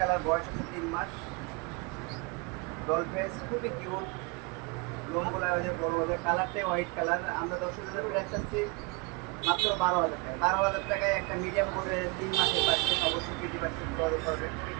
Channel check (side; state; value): left; quieter; 28.6 dB